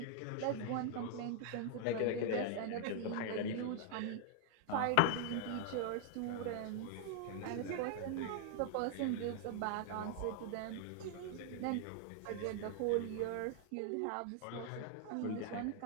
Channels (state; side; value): different; both; correlation 0.00